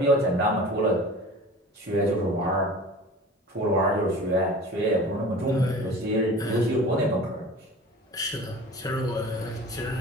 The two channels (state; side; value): normal; both; correlation 0.40